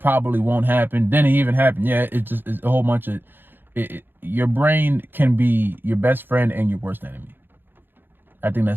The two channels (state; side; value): late; left; 0.098 ms